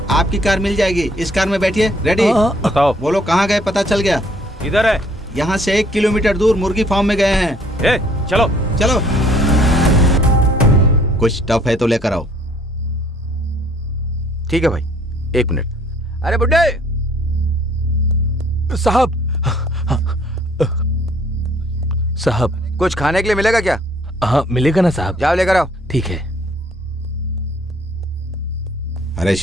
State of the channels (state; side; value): normal; both; correlation 0.61